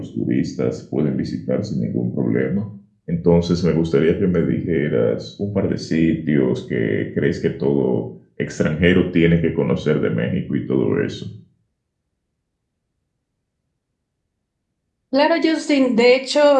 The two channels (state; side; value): identical; both; correlation 1.00